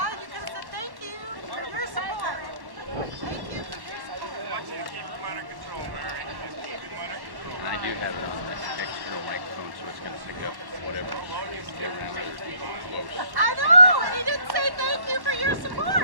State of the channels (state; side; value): late; left; 1.1 ms